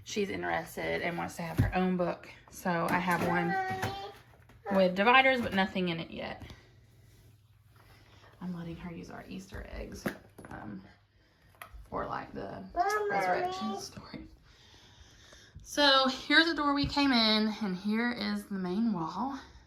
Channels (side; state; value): both; identical; correlation 1.00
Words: she's interested and wants to have her own book. So I have one with dividers, but nothing in it yet. I'm letting her use our Easter eggs for like the resurrection story. So here's the door we came in, and here is the main wall.